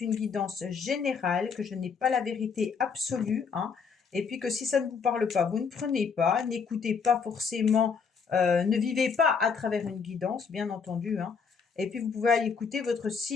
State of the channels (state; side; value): quieter; right; 5.7 dB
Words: une guidance générale, que je n'ai pas la vérité absolue, hein, et puis que si ça ne vous parle pas, vous ne prenez pas, n'écoutez pas forcément, ne vivez pas à travers une guidance, bien entendu, hein, et puis vous pouvez aller écouter votre